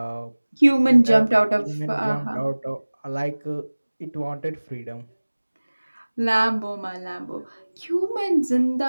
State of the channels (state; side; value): inverted; both; correlation -1.00